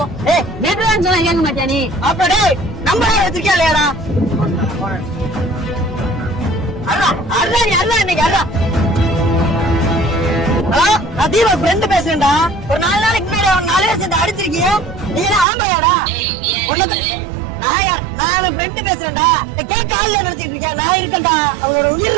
ஏய் நேத்துதான் சொன்னா கேட்க மாட்டியா நீ? அப்படியே நம்பரே வச்சிருக்கியா இல்லையாடா? அல்ல இன்னைக்கு அல்ல. ஹலோ நான் தீபா ஃப்ரெண்ட் பேசுறேன்டா. ஒரு 4 நாளைக்கு முன்னாடி அவன் 4 பேர் சேர்ந்து அடிச்சிருக்கீங்க. நீ என்ன ஆமையாடா? நான் ஃப்ரெண்ட் பேசுறேன்டா. கேட்க ஆள் நினைச்சிட்டு இருக்கேன். நான் இருக்கேன்டா. அவளோட உயிர்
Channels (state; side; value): drops out; left; at 15.5 s